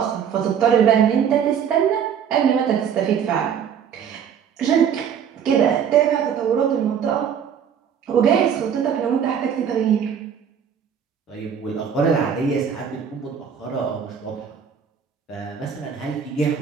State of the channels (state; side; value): quieter; left; 7.9 dB